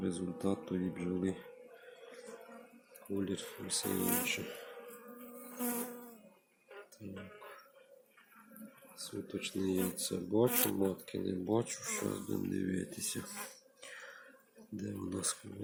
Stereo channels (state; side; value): identical; both; correlation 1.00